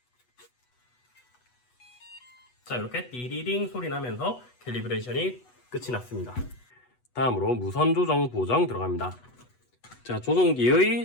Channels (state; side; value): late; right; 8.1 ms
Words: 자, 이렇게 띠리링 소리 나면서 캘리브레이션이 끝이 났습니다. 다음으로 무선 조정 보정 들어갑니다. 자,